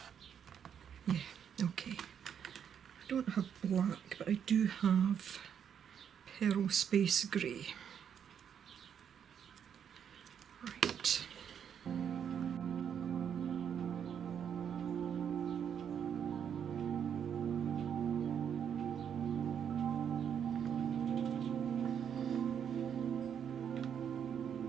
yeah, okay. I don't have black, but I do have Pearl Space Grey. Right.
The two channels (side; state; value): left; quieter; 8.2 dB